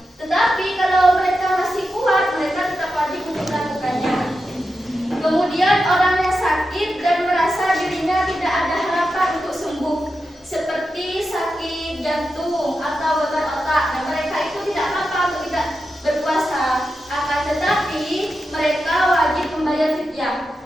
Tetapi kalau mereka masih kuat, mereka tetap wajib untuk melakukannya. Kemudian orang yang sakit dan merasa dirinya tidak ada harapan untuk sembuh, seperti sakit jantung atau beban otak. Nah, mereka itu tidak apa-apa untuk tidak berpuasa. Akan tetapi mereka wajib membayar fidyah.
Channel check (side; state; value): both; normal; correlation 0.89